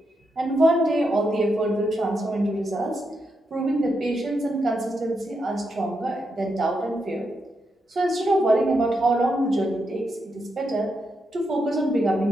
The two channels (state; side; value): normal; both; correlation 0.83